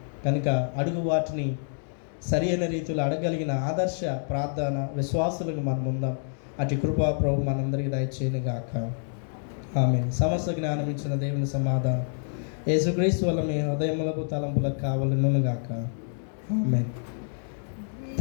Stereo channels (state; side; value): silent; right; digital silence